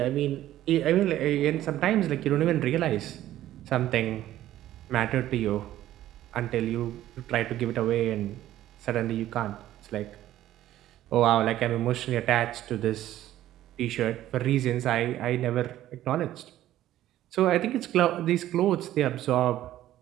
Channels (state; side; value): quieter; left; 13.5 dB